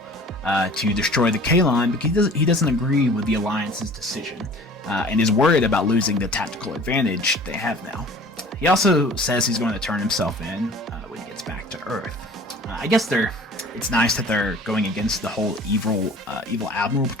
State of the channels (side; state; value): both; normal; correlation 0.46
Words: to destroy the Kalon, but he doesn't agree with the Alliance's decision, and is worried about losing the tactical advantage they have now. He also says he's going to turn himself in when he gets back to Earth. I guess it's nice that they're going against the whole evil admiral